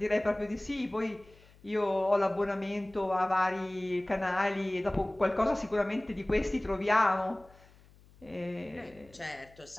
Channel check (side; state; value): left; noise; hum, 26 dB below the sound